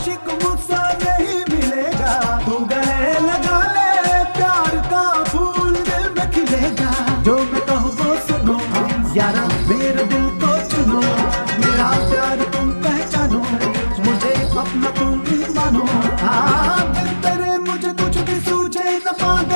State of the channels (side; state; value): both; inverted; correlation -1.00